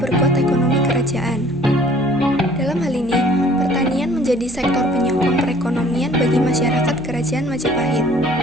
ekonomi kerajaan. Dalam hal ini, pertanian menjadi sektor penyokong perekonomian bagi masyarakat Kerajaan Majapahit.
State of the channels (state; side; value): noise; right; hum, 19 dB below the sound